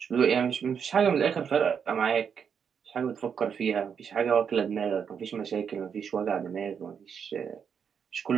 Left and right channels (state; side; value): quieter; left; 7.1 dB